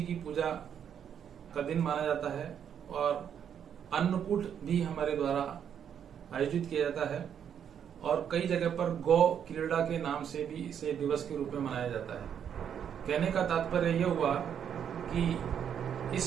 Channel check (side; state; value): left; quieter; 8.5 dB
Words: की पूजा का दिन माना जाता है और अन्नकूट भी हमारे द्वारा आयोजित किया जाता है, और कई जगह पर गौ क्रीड़ा के नाम से भी इसे दिवस के रूप में मनाया जाता है। कहने का तात्पर्य यह हुआ कि